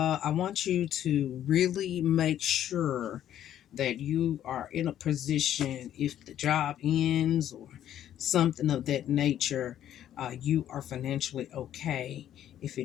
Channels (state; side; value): quieter; right; 11.2 dB